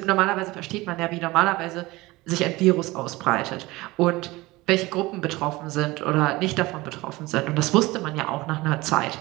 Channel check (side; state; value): left; quieter; 20.7 dB